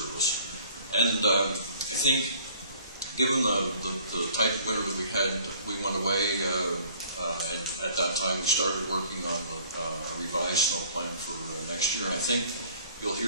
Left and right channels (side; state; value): both; inverted; correlation -0.54